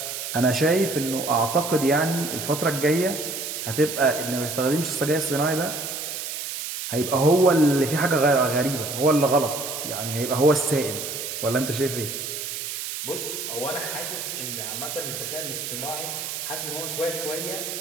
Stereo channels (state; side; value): noise; right; hiss, 6 dB below the sound